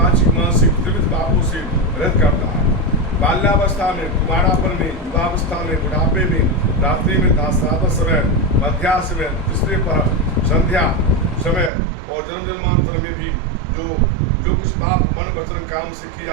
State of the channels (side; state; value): left; drops out; at 11.7 s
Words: मानसिक त्रिविध पापों से रहित करता है। बाल्यावस्था में, कुमारापन में, युवावस्था में, बुढ़ापे में, रात्रि में, दासरात समय, मध्याह्न में, तीसरे पर संध्या समय और जन्म जन्मांतर में भी जो कुछ पाप मन वचन काम से किए